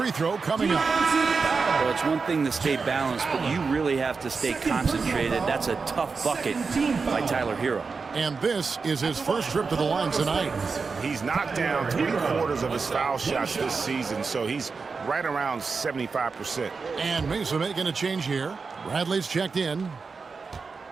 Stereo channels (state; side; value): quieter; left; 4.8 dB